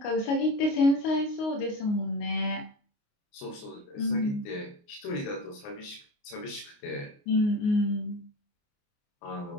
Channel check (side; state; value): right; late; 29 ms